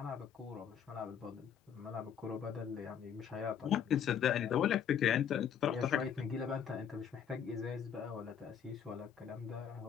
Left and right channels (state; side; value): quieter; right; 8.2 dB